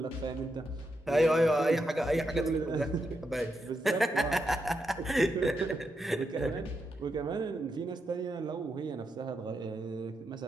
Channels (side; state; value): both; normal; correlation 0.84